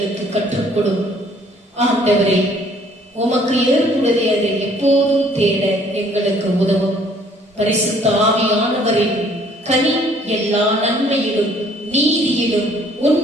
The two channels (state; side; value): normal; both; correlation 0.60